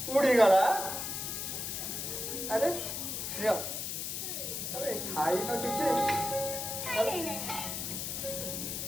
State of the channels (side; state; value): left; noise; hiss, 4 dB below the sound